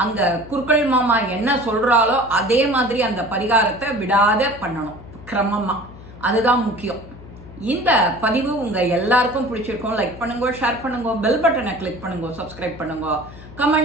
அங்கே குருக்கள் மாமா என்ன சொல்கிறாலோ அதே மாதிரி அந்த பரிகாரத்தை விடாத பண்ணணும் கிரமமாக, அதுதான் முக்கியம். இந்த பதிவு உங்கள் எல்லாருக்கும் பிடிச்சிருக்கும். லைக் பண்ணுங்க, ஷேர் பண்ணுங்க, பெல் பட்டனை கிளிக் பண்ணுங்க, சப்ஸ்கிரைப் பண்ணுங்க,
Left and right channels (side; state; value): left; noise; hum, 17 dB below the sound